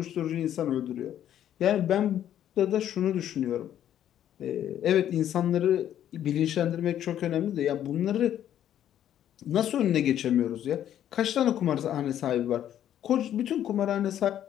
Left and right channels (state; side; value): quieter; right; 10.9 dB